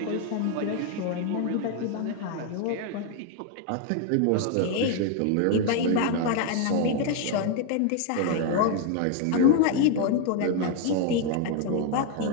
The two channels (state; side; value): different; both; correlation 0.01